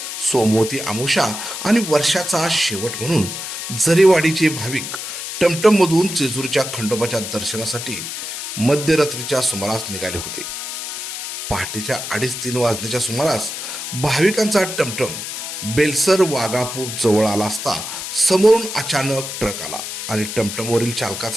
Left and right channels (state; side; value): noise; left; hiss, 6 dB below the sound